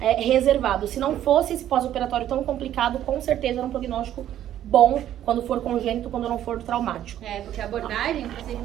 Se não fosse esse pós-operatório tão complicado, com certeza era um prognóstico bom quando for congênito, quando não for traumático. Porque a abordagem, o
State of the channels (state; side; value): quieter; left; 11.6 dB